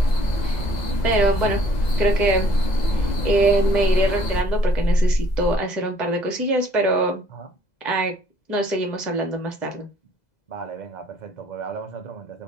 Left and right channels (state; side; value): late; right; 2.0 ms